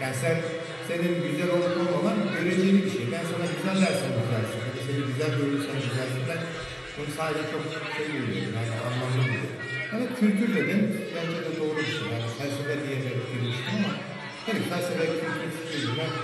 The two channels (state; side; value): identical; both; correlation 1.00